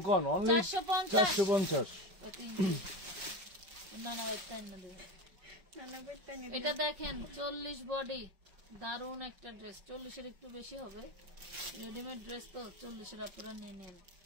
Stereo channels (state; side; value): late; left; 5.3 ms